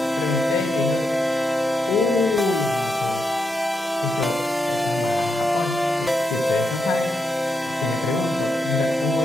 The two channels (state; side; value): normal; both; correlation 0.83